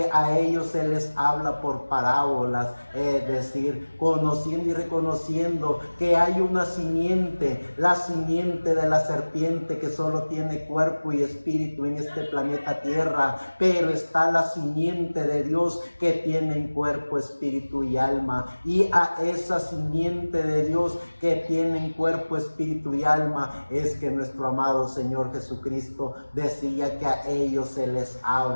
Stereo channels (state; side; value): inverted; both; correlation -1.00